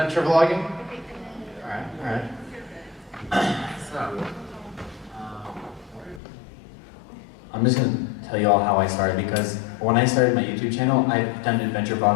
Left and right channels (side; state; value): right; drops out; at 6.2 s